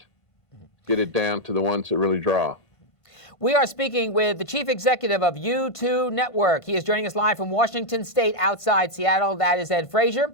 get it down to the ones that really draw. We are speaking with the chief executive of YouToo Network. He is joining us live from Washington State outside Seattle. That is Ed Frazier.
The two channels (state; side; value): late; right; 1.5 ms